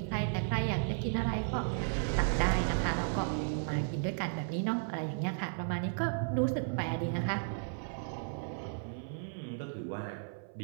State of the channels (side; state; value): left; silent; 55 dB below the other